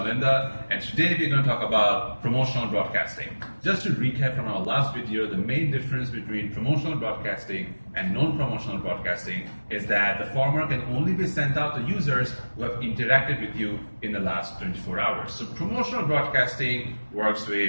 and today we're going to talk about promotional broadcasting. Just to recap from our last video, the main difference between promotional broadcasting and non-promotional broadcasting is that the former can only be sent out to users who have interacted with you in the last 24 hours. So promotional broadcasting works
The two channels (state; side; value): inverted; both; correlation -1.00